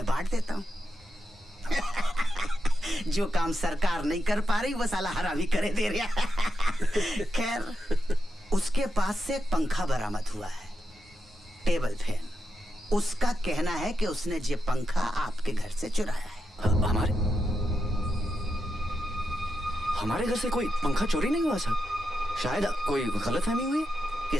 बांट देता हूँ। जो काम सरकार नहीं कर पा रही वो साला हरामी करे दे रहा। खैर, उसके पास से एक पंखा बरामद हुआ है, टेबल फैन। उसका कहना है कि उसने ये पंखा आपके घर से चुराया है। हमारे घर से कोई पंखा चोरी नहीं हुआ साहब। शायद कोई गलतफहमी हुई।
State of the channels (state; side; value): normal; both; correlation 0.86